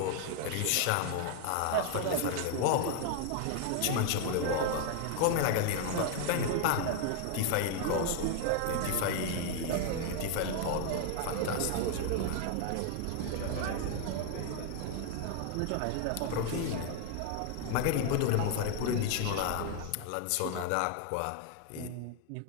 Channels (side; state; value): both; different; correlation 0.00